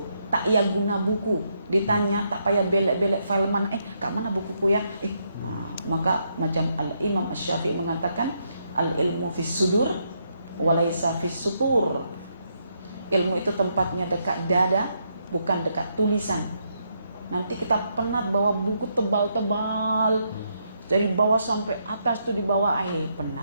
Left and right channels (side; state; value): both; inverted; correlation -0.77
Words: Tak ia guna buku, ditanya tak payah belek-belek file mana, kak mana bukuku ya? Maka macam Al-Imam Asy-Syafi'i mengatakan al-ilmu fis sudur walaysa fis sutur. Ilmu itu tempatnya dekat dada, bukan dekat tulisan. Nanti kita penat bawa buku tebal-tebal dari bawah sampai atas tuh di bawah,